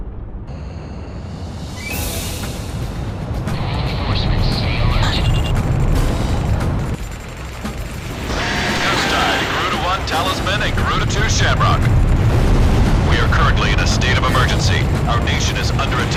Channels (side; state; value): both; identical; correlation 1.00